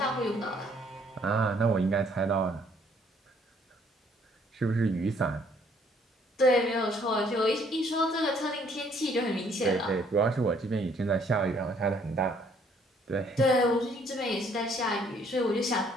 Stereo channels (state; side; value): normal; both; correlation 0.64